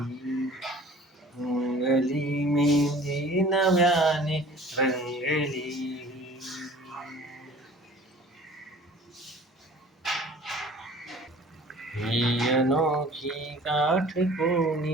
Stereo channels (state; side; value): normal; both; correlation 0.47